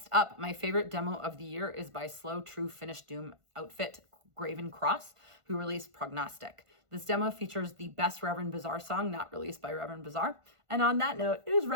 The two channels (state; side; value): late; left; 1.5 ms